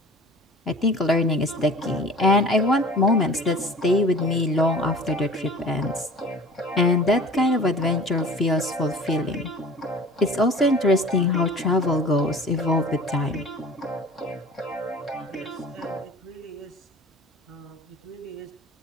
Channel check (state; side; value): normal; both; correlation 0.43